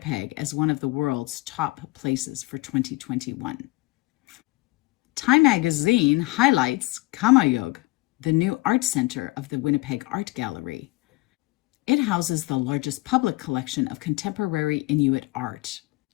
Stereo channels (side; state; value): right; quieter; 22.2 dB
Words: as one of the world's top places for 2021. Time magazine highlights Kamayug, the new art center of the Winnipeg Art Gallery. It houses the largest public collection of contemporary Inuit art.